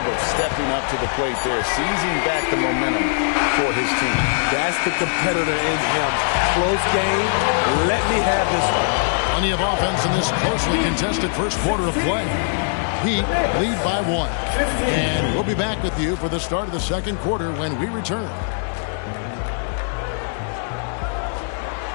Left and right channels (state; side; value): silent; right; 64 dB below the other